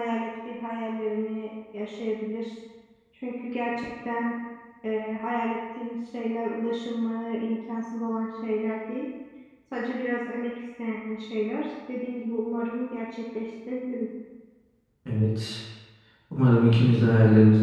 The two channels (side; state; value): both; identical; correlation 1.00